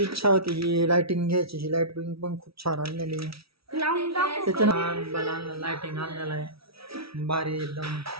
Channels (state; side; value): late; left; 0.76 ms